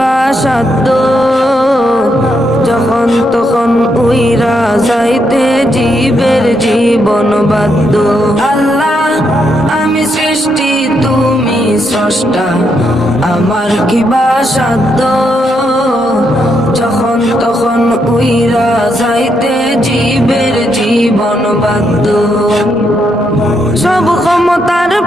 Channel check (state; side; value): normal; both; correlation 0.79